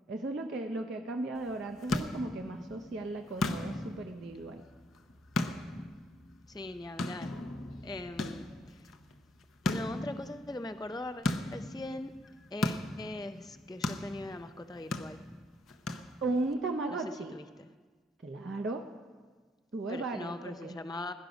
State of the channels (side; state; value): both; normal; correlation 0.72